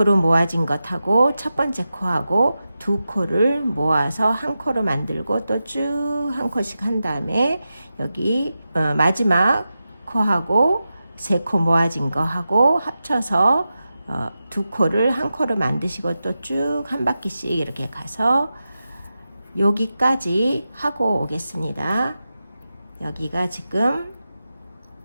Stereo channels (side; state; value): both; inverted; correlation -0.91